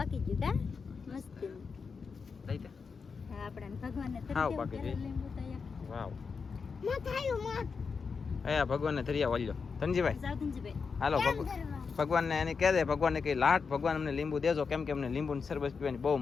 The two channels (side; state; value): right; quieter; 5.3 dB